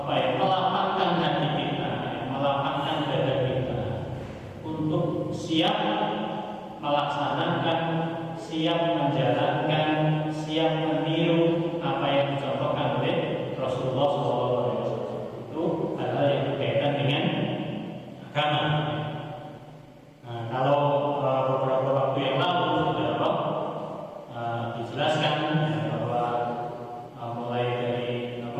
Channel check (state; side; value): identical; both; correlation 1.00